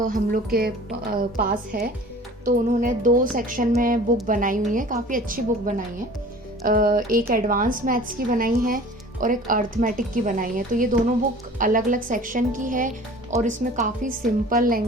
हम लोग के पास है, तो उन्होंने 2 सेक्शन में बुक बनाई हुई है, काफ़ी अच्छी बुक बनाई है। एक एडवांस मैथ्स की बनाई है और एक अर्थमेटिक की बनाई है। तो ये दोनों बुक अलग अलग सेक्शन की है और इसमें काफ़ी सिंपल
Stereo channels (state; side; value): normal; both; correlation 0.44